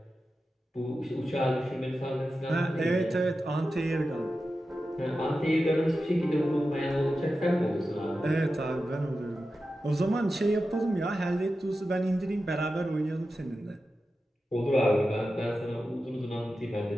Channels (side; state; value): both; normal; correlation 0.92